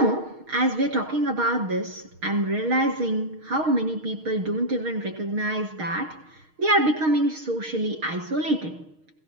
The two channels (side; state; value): left; late; 6.4 ms